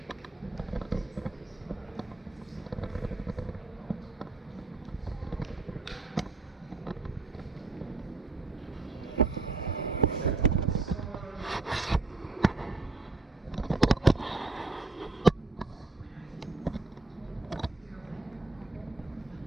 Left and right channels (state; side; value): quieter; left; 3.2 dB